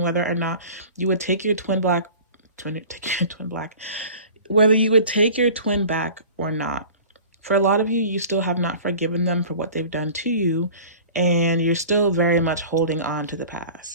whether or not you would take your whether you would take your twin back or not. For a lot of you, you still have not forgiven them for what they've done to you, and you're still very much holding on to the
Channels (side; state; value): both; inverted; correlation -0.42